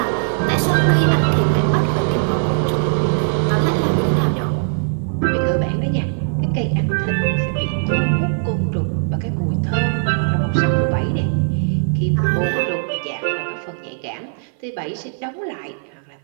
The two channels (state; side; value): silent; left; 56 dB below the other